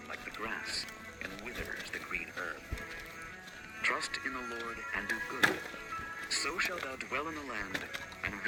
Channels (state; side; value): identical; both; correlation 1.00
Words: like the grass, and wither as the green herb. Trust in the Lord, and do good. So shalt thou dwell in the land, and